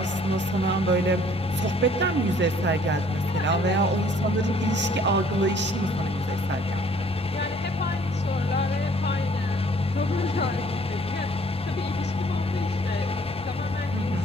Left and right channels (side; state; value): both; normal; correlation 0.59